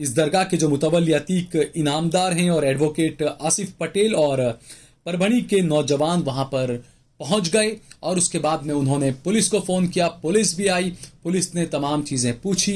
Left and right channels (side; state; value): both; identical; correlation 1.00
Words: दरगाह के जो मुतवल्ली अतीक इनामदार हैं और एडवोकेट आसिफ पटेल और परभणी के नौजवान वहां पर पहुंच गए और उसके बाद में उन्होंने पुलिस को फोन किया। पुलिस भी आई, पुलिस ने तमाम चीजें